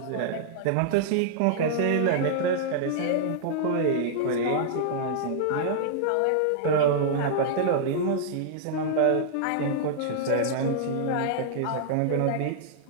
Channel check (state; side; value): different; both; correlation -0.01